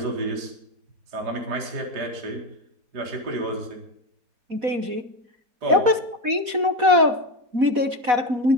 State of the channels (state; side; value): late; left; 4.1 ms